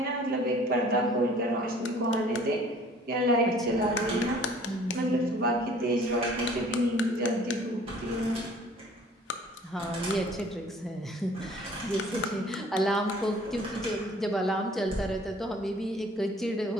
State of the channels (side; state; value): both; normal; correlation 0.53